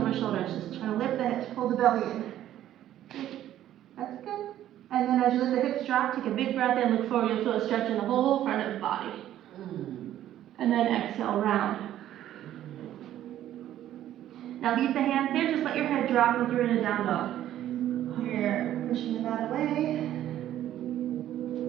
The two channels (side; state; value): left; quieter; 12.3 dB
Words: shoulders. Just trying to lift the hips, pull the belly in. Good. That's good. And then as you let the hips drop, take a big breath in, look forward. You'll feel a stretch in the whole front of the body. And then exhale, round. Now leave the hands there. Just let your head drop like you're in a down dog. You're pushing the mat away.